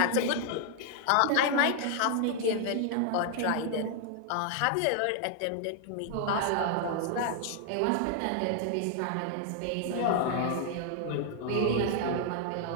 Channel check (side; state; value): both; different; correlation 0.00